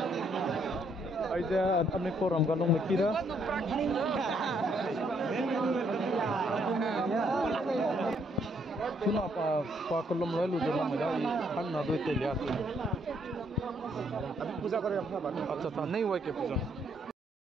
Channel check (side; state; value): both; normal; correlation 0.71